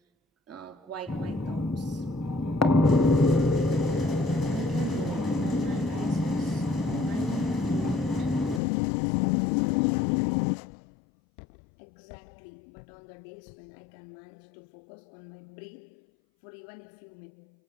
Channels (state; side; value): drops out; right; at 8.6 s